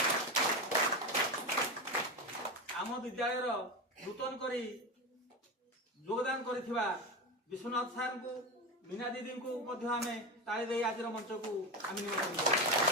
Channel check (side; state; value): both; normal; correlation 0.19